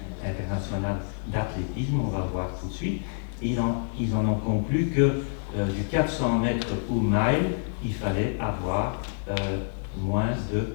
internationale d'athlétisme, on va le voir tout de suite. Ils en ont conclu que du 400 mètres ou mile, il fallait avoir moins de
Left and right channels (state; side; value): silent; right; 60 dB below the other